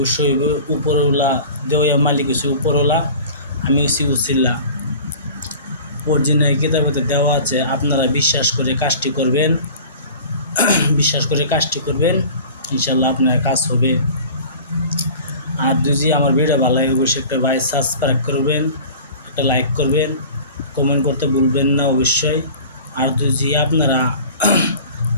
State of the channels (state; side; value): inverted; both; correlation -0.41